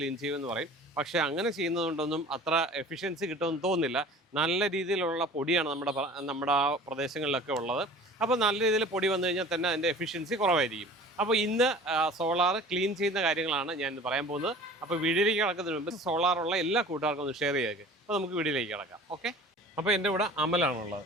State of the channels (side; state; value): both; normal; correlation 0.43